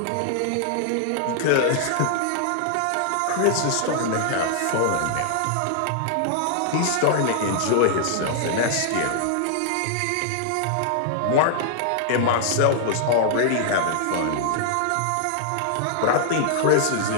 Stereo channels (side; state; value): both; different; correlation -0.01